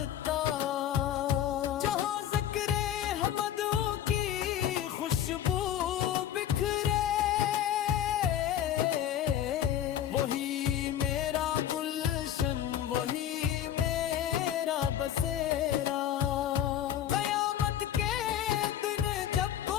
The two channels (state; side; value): quieter; right; 10.7 dB